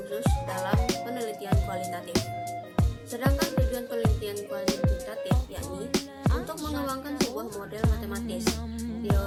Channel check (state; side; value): identical; both; correlation 1.00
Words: khusus dalam penelitian kualitatif. Sedangkan tujuan penelitian kualitatif yakni untuk mengembangkan sebuah model matematis,